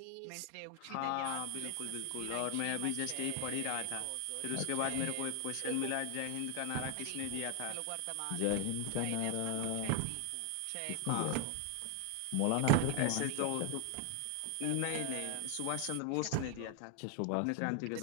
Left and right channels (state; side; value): different; both; correlation 0.01